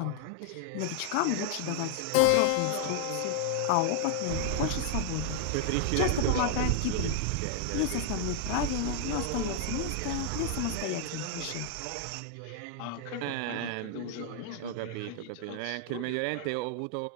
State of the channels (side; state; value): both; different; correlation 0.00